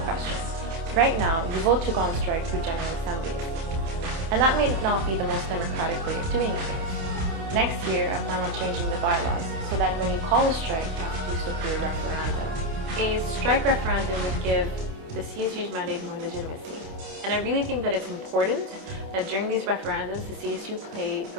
Right now, you vote to go on strike through General Assembly. And that may not be the most democratic way of doing things. Next year, I plan on changing the bylaws so that when you call a strike, you have to do so through a referendum. A strike referendum would give the CSU's mandate more legitimacy. And I really think that it's important that during these referendums, the CSU play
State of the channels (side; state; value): left; late; 28 ms